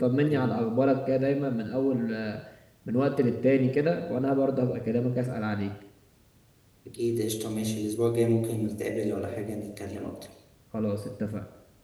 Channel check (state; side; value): identical; both; correlation 1.00